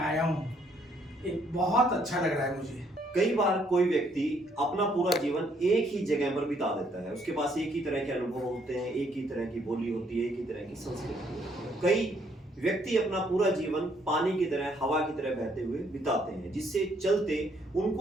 आया हूँ, एक बहुत अच्छा लग रहा है मुझे। कई बार कोई व्यक्ति अपना पूरा जीवन एक ही जगह पर बिता देता है। उसके पास एक ही तरह के अनुभव होते हैं, एक ही तरह की बोली होती है, एक ही तरह की संस्कृति होती है। कई व्यक्ति अपना पूरा जीवन पानी की तरह, हवा की तरह बहते हुए बिताते हैं, जिससे चलते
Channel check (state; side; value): normal; both; correlation 0.68